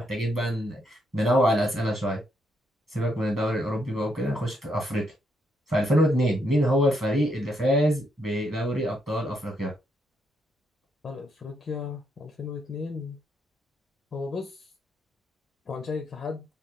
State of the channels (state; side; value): normal; both; correlation 0.76